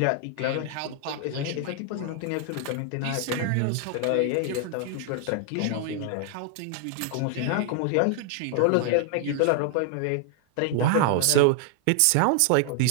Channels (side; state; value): both; different; correlation 0.00